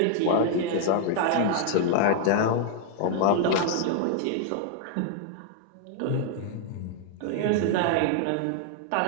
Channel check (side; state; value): both; different; correlation 0.00